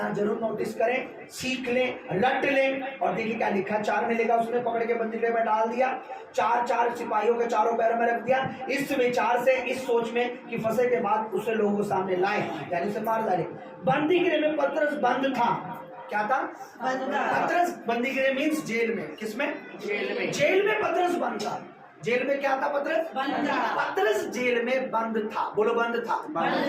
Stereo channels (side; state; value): both; identical; correlation 1.00